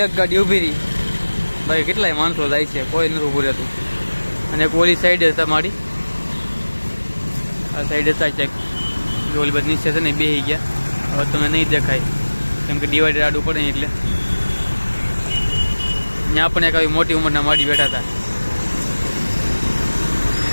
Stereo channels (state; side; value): inverted; both; correlation -1.00